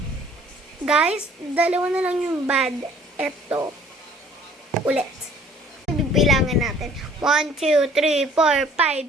Guys, dalawa na lang yung bad. Ito. Ulit. Bibilangan natin. 1, 2, 3, 4,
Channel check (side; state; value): both; normal; correlation 0.55